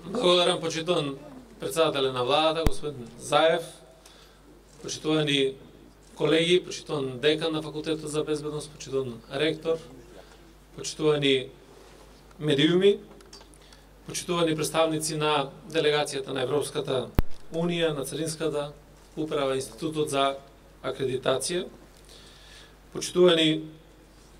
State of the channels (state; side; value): identical; both; correlation 1.00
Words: Благодарам, почитуван председателя на владата, господин Заев, почитувани колеги, почитуван декан на Факултетот за безбедност, почитуван ректор, почитувани медиуми, почитувани представници на делегацијата на Европската Унија, на Царинската управа, Институтот за акредитација, почитувани